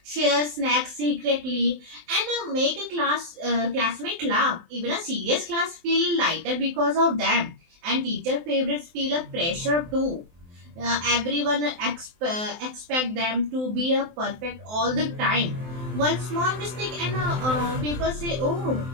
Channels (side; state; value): left; late; 23 ms